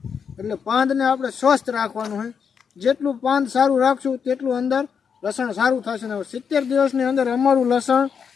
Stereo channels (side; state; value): right; quieter; 6.7 dB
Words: એટલે પાંદને આપણે સ્વસ્થ રાખવાનું હોય. જેટલું પાંદ સારું રાખશું તેટલું અંદર લસણ સારું થશે. ને 70 દિવસની અંદર અમારું લસણ